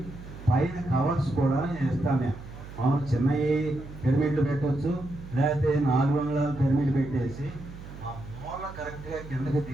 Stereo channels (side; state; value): right; noise; hum, 14 dB below the sound